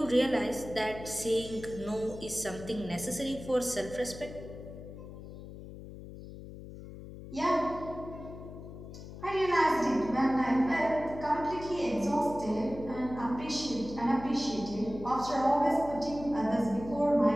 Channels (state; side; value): noise; left; hum, 13 dB below the sound